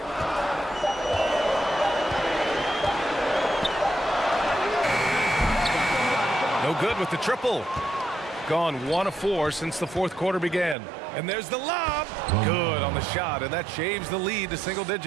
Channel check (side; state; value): left; drops out; at 10.8 s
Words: No good with the triple. Gone 1 of 4 since the 4th quarter began. And there's the lob. Good on the shot, and that shaves the lead to single